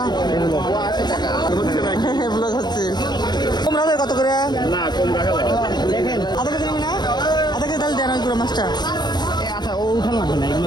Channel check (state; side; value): late; right; 0.21 ms